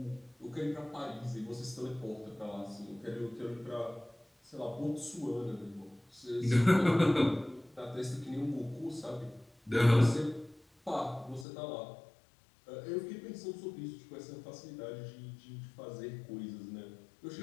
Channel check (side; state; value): right; drops out; at 11.5 s